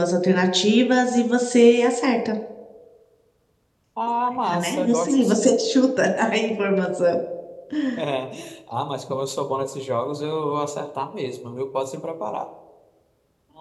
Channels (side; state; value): both; identical; correlation 1.00